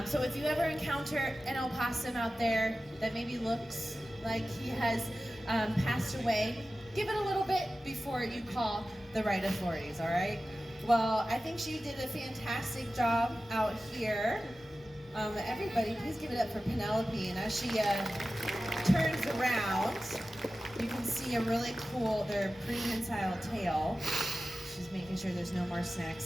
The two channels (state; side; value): normal; both; correlation 0.95